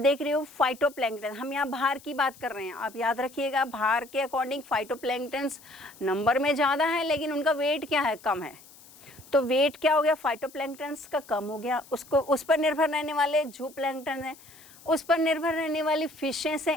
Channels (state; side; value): noise; left; hiss, 22 dB below the sound